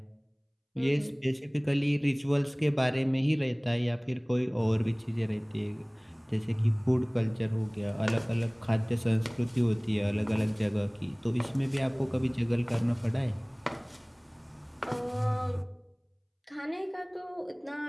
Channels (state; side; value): identical; both; correlation 1.00